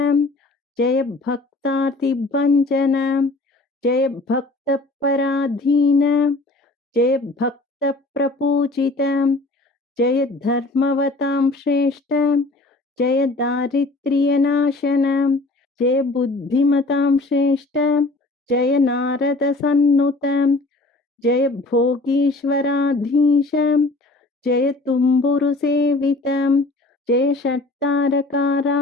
जय भक्तार्तिभञ्जन जय भक्तपराधीन जय भक्तप्रपूजित जय धर्मवतां श्रेष्ठ जय दारिद्र्यनाशन जय बुद्धिमतां श्रेष्ठ जय नारदसन्नुत जय भोगीश्वराधीश जय तुम्बुरुसेवित जय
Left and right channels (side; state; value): right; quieter; 3.0 dB